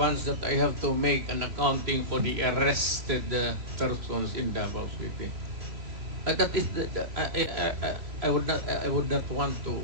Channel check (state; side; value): late; left; 3.1 ms